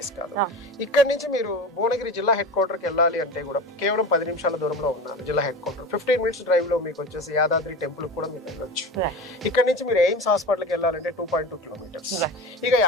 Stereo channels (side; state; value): both; normal; correlation 0.29